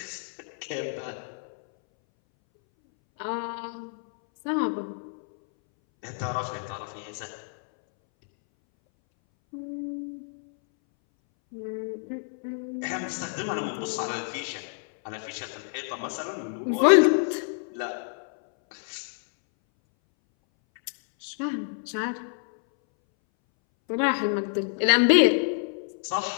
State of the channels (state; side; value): silent; right; 59 dB below the other